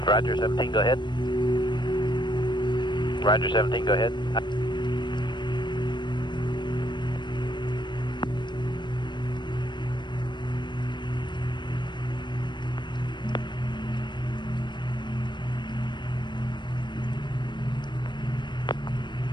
Roger, 17, go ahead. Roger, 17, go ahead.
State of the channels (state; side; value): late; right; 0.22 ms